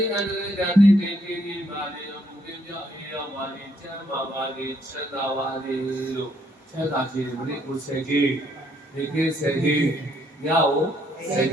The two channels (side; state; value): both; normal; correlation 0.70